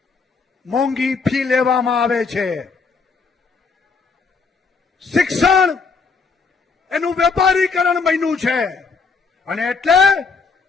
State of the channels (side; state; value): right; quieter; 4.8 dB